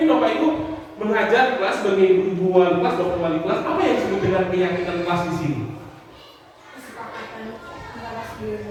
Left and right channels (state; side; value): identical; both; correlation 1.00